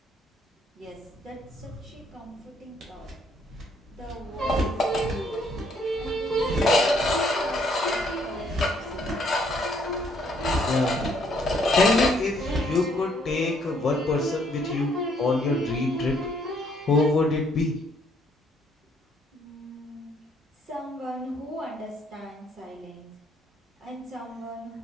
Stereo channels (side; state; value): both; normal; correlation 0.67